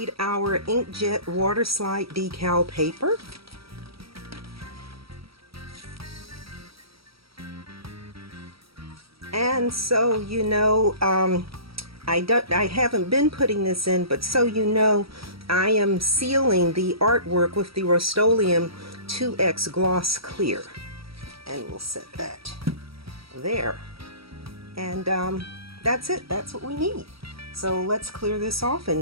our inkjet water slide decal paper. And so you know, I haven't been putting this in, but so you know, I am sealing the artwork with the Rust-Oleum 2X Gloss Clear. And we'll set that there. And that's it. That's what we need. So let's clear this off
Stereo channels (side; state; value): left; late; 0.76 ms